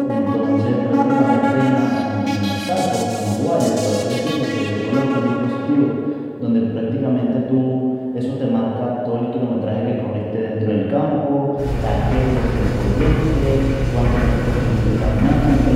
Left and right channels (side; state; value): both; identical; correlation 1.00